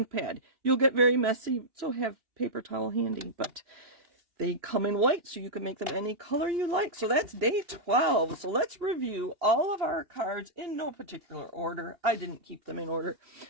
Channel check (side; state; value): left; late; 2.8 ms